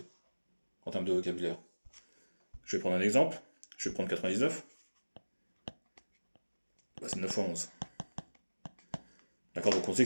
en termes de vocabulaire. Je vais prendre un exemple, je vais prendre 99, bah, c'est 9 fois 11. D'accord, donc on sait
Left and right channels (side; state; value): both; inverted; correlation -1.00